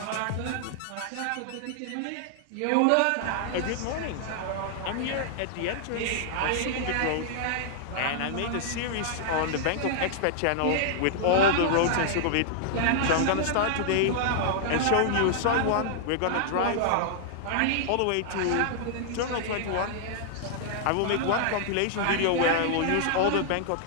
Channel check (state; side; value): different; both; correlation -0.01